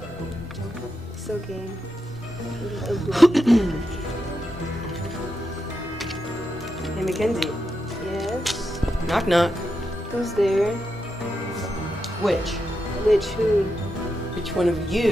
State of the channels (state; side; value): normal; both; correlation 0.86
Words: It's okay. Hey, Mackenzie. Yes. Knock knock. Who's there? Which? Which who? Which one of